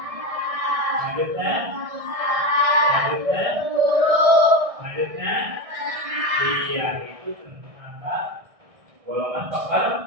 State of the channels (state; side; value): late; left; 1.6 ms